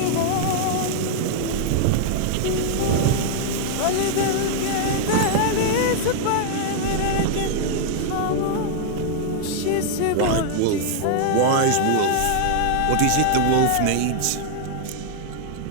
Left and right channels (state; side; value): different; both; correlation 0.00